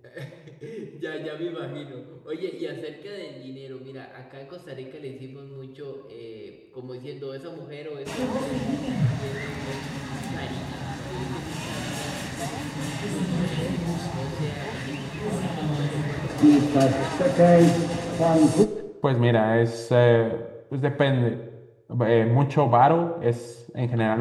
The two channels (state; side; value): identical; both; correlation 1.00